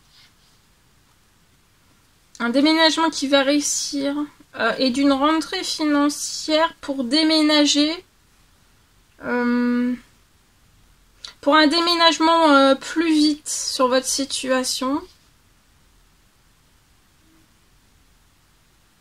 qui va réussir et d'une rentrée financière pour déménager, pour un déménagement plus vite sur votre situation.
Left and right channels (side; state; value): both; identical; correlation 1.00